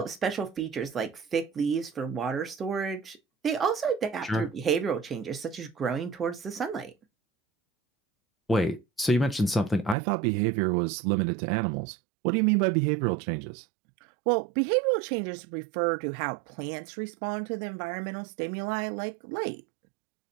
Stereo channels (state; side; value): drops out; left; at 10.0 s